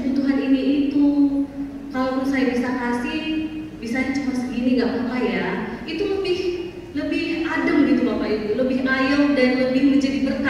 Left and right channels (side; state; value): both; identical; correlation 1.00